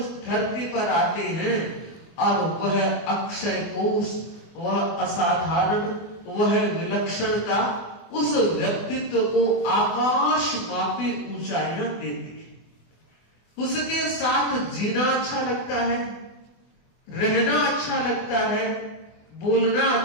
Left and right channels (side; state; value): right; late; 24 ms